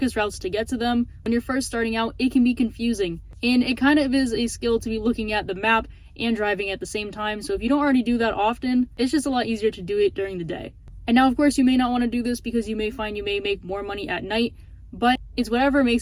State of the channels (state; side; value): identical; both; correlation 1.00